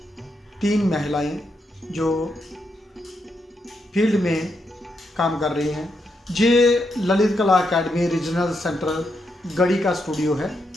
तीन महिलाएं जो फील्ड में काम कर रही हैं। ये ललित कला अकेडमी रीजनल सेंटर गढ़ी का स्टूडियो है।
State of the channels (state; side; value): normal; both; correlation 0.82